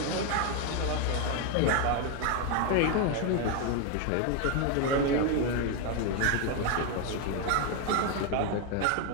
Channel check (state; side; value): different; both; correlation 0.01